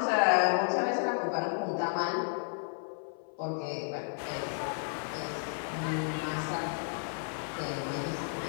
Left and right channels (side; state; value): right; silent; 56 dB below the other